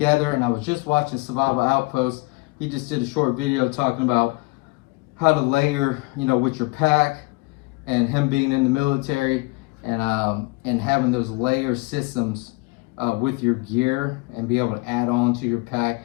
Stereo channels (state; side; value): quieter; right; 24.9 dB